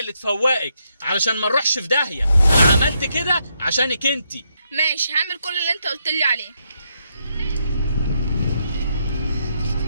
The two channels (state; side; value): inverted; both; correlation -0.78